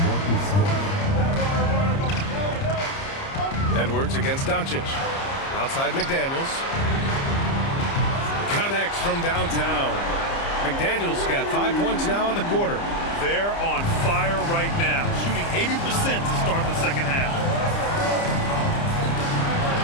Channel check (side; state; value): right; late; 30 ms